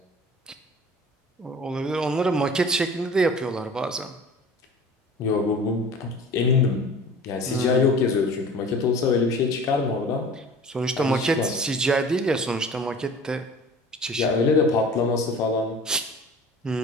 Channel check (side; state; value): both; normal; correlation 0.42